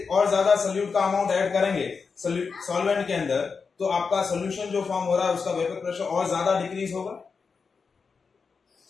और ज्यादा सोल्यूट का अमाउंट ऐड करेंगे सॉल्वेंट के अंदर, तो आपका सोल्यूशन जो फॉर्म हो रहा है उसका वेपर प्रेशर और ज्यादा डिक्रीज होगा,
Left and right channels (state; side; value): quieter; right; 5.2 dB